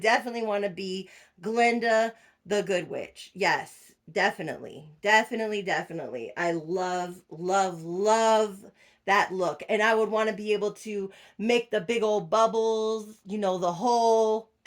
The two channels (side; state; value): both; identical; correlation 1.00